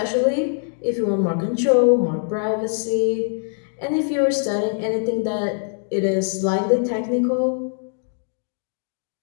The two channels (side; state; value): right; silent; digital silence